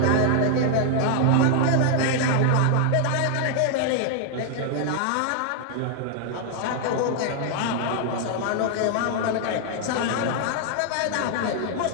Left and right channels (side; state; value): both; different; correlation 0.00